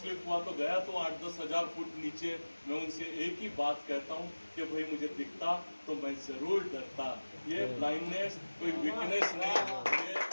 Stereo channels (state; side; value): inverted; both; correlation -1.00